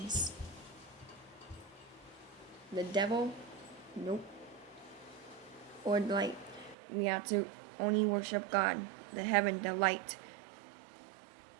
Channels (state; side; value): drops out; left; at 6.8 s